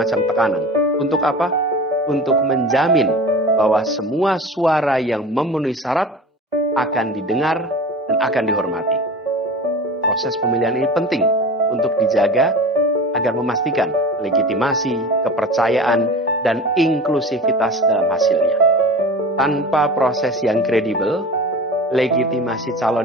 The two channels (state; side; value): normal; both; correlation 0.34